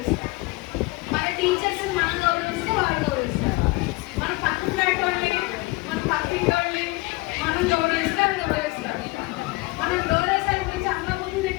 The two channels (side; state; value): right; quieter; 23.4 dB